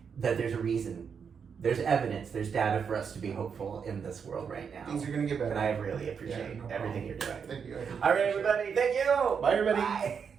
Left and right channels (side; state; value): left; quieter; 6.6 dB